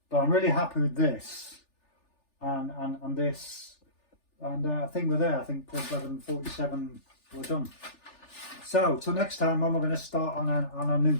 But I'm really happy with this and this. And I think we're there. I think Porthleven 47, we're done. So till next time, I'm going to start on a new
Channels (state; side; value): late; right; 3.4 ms